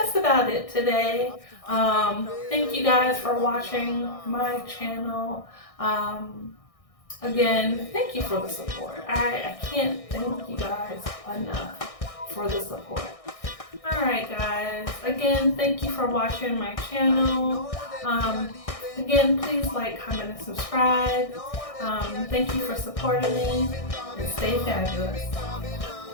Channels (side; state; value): right; late; 1.6 ms